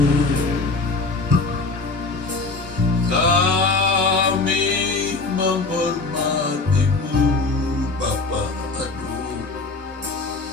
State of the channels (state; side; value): quieter; right; 3.6 dB